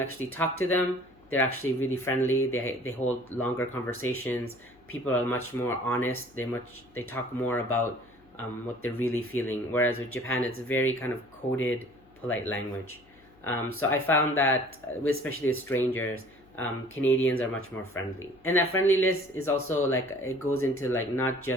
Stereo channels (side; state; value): left; noise; hum, 29 dB below the sound